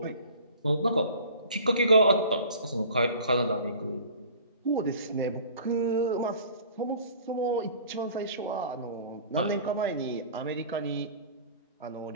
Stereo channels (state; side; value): inverted; both; correlation -0.45